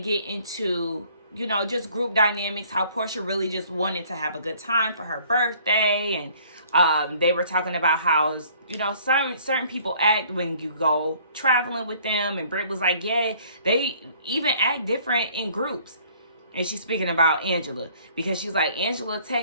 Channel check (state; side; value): inverted; both; correlation -0.57